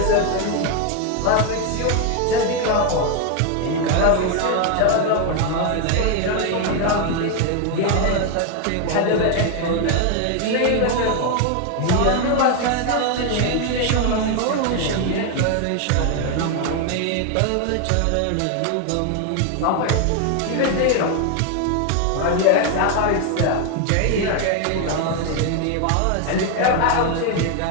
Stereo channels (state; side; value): different; both; correlation 0.01